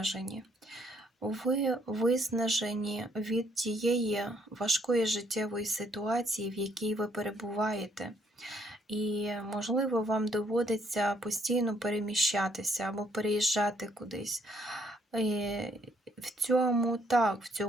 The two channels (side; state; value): both; normal; correlation 0.68